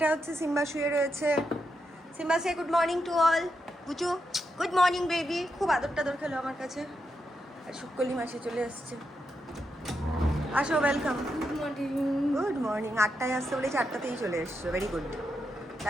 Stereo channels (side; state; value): both; normal; correlation 0.84